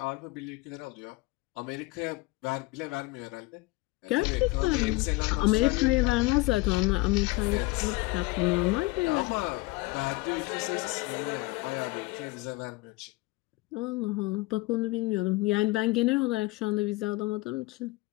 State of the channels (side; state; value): right; quieter; 22.0 dB